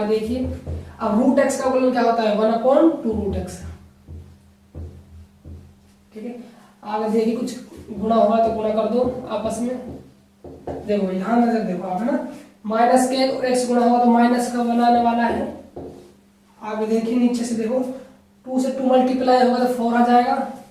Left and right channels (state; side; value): identical; both; correlation 1.00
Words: देखिए, अब रूट x का अवकलन क्या होता है, 1/2 रूट x, ठीक है। आगे देखिए, कुछ गुणा होगा तो गुणा कर दो आपस में। देखो यहाँ नजर देखो आप, है ना। माइनस के x गुणा होगा तो माइनस का बनाने वाला है। आगे देखिए नीचे से देखो, 2 से 2 मल्टीप्लाई होगा तो 4 आ जाएगा,